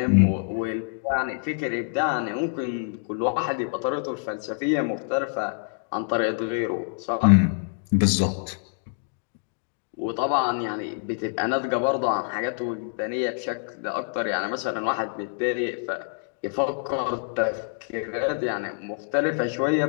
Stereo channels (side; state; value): right; silent; digital silence